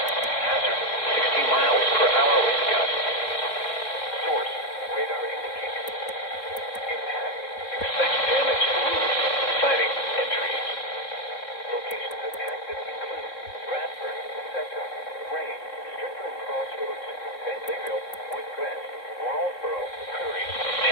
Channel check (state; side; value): late; right; 3.9 ms